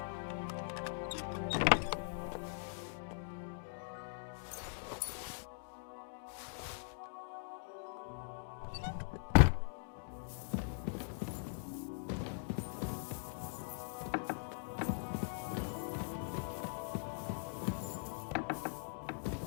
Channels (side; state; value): right; silent; digital silence